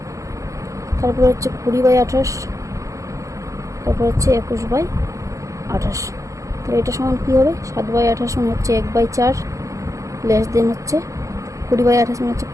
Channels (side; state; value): left; late; 0.15 ms